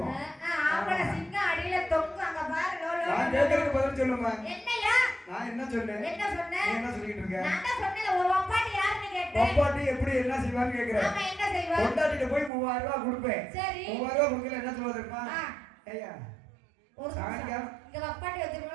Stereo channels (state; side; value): drops out; left; at 12.5 s